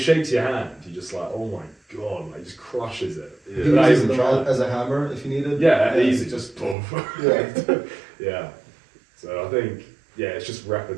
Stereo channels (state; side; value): drops out; left; at 6.8 s